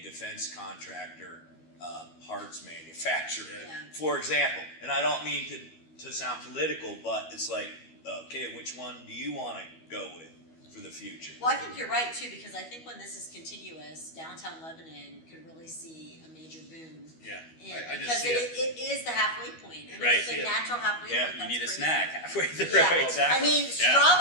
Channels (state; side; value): late; right; 12 ms